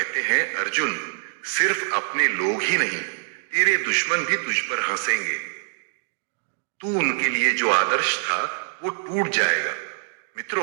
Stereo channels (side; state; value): left; silent; digital silence